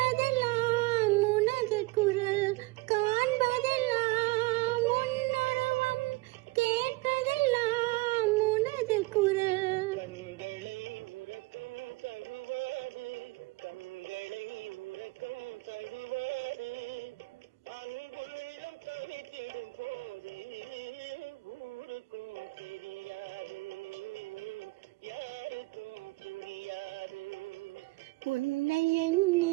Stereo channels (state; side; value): quieter; left; 22.8 dB